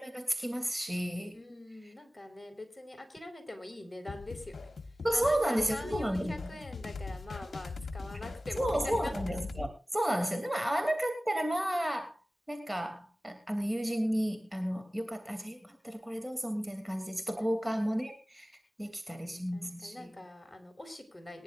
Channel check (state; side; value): normal; both; correlation 0.97